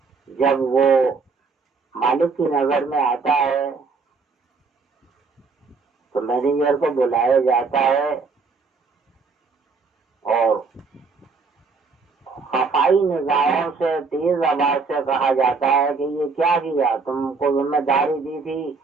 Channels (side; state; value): left; quieter; 4.5 dB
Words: جب وہ مالک کی نظر میں آتا ہے تو مینیجر کو بلایا جاتا ہے اور خفائی نگاہوں سے تیز آواز سے کہا جاتا ہے کہ یہ کیا کیا، تم کو ذمہ داری دی تھی،